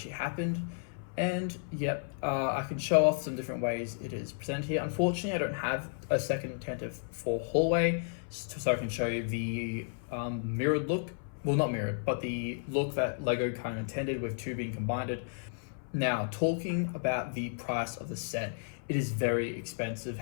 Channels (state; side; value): silent; right; 56 dB below the other